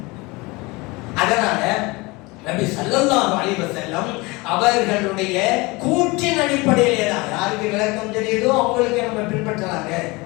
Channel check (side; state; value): right; quieter; 24.3 dB